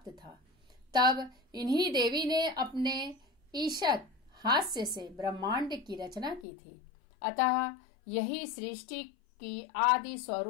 था, तब इन्हीं देवी ने अपने ईशत हास्य से ब्रह्मांड की रचना की थी। अतः यही सृष्टि की आदि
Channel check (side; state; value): right; drops out; at 6.5 s